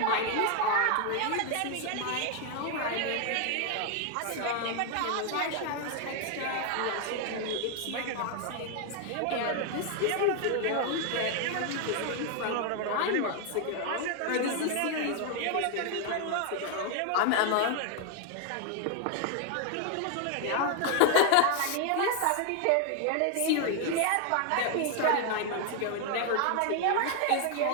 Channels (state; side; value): different; both; correlation 0.00